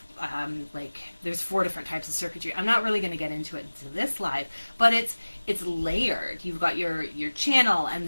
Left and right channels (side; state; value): both; inverted; correlation -1.00